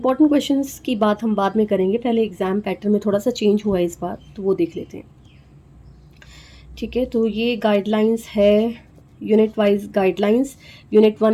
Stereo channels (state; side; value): identical; both; correlation 1.00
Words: क्वेश्चंस की बात हम बाद में करेंगे। पहले एग्ज़ाम पैटर्न में थोड़ा सा चेंज हुआ है इस बार, तो वो देख लेते हैं। ठीक है, तो ये गाइडलाइंस है यूनिट वाइज गाइडलाइंस। यूनिट